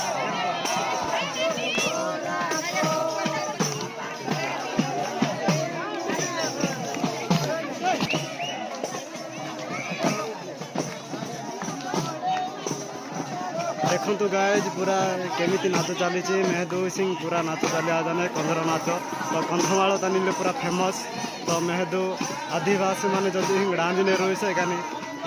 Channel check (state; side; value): identical; both; correlation 1.00